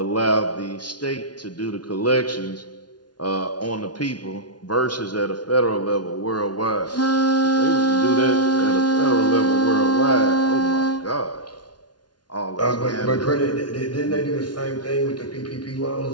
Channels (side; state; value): right; late; 0.70 ms